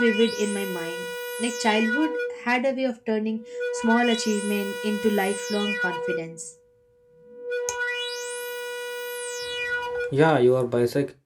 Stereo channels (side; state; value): both; identical; correlation 1.00